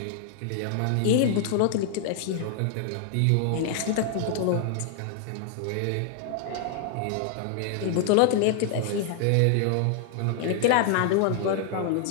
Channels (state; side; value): different; both; correlation 0.00